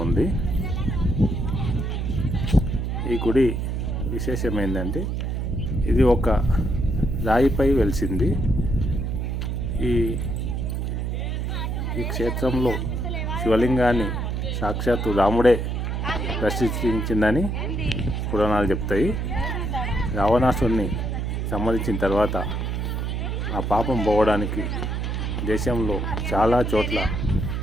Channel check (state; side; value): noise; right; hum, 1 dB below the sound